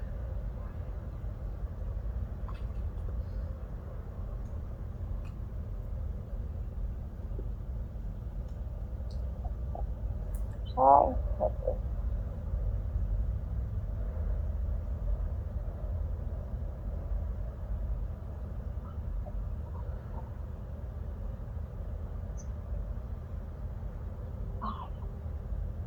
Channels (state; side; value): identical; both; correlation 1.00